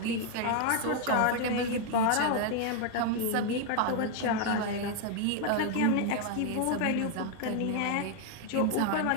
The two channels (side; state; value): both; different; correlation 0.00